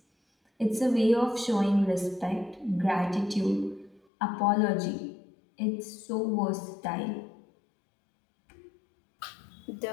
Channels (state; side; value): drops out; right; at 4.0 s